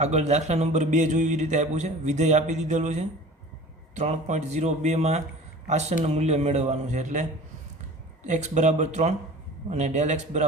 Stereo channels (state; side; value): normal; both; correlation 0.41